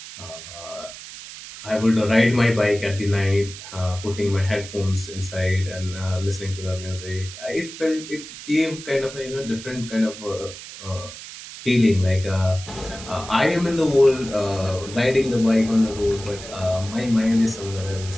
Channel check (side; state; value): right; noise; hiss, 13 dB below the sound